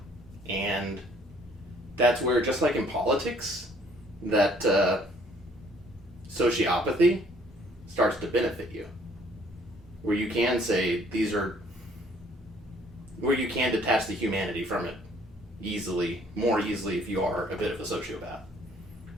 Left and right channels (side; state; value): both; normal; correlation 0.61